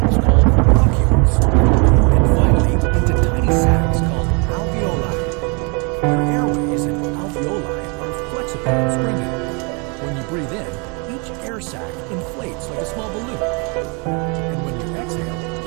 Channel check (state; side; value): quieter; left; 33.2 dB